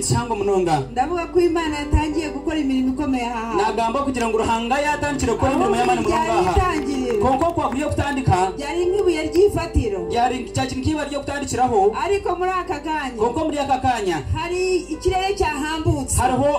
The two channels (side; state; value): both; identical; correlation 1.00